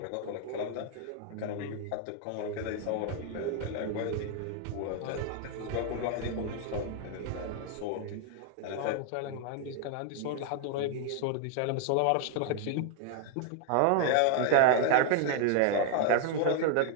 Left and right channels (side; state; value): both; different; correlation 0.00